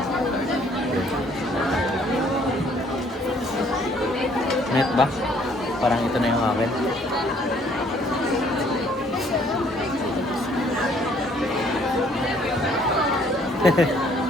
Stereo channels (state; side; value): normal; both; correlation 0.62